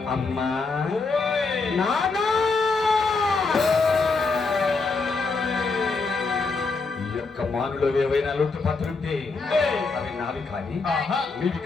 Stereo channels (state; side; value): quieter; right; 4.2 dB